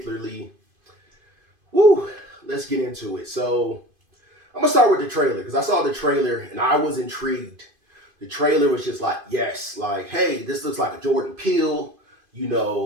let's get into it. So, I'm gonna start with the trailer because I saw the trailer and I was intrigued. The trailer was just like, yes, like, hey, this looks like a Jordan Peele,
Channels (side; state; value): left; late; 2.5 ms